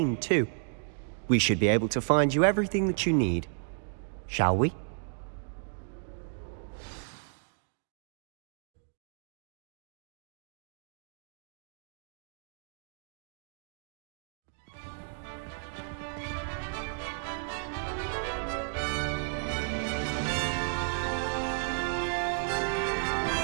too. We should be able to find you everything that you need. Shall we?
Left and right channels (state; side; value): silent; left; 56 dB below the other